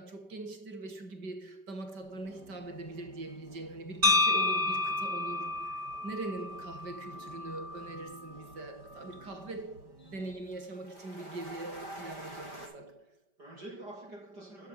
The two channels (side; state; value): left; late; 5.1 ms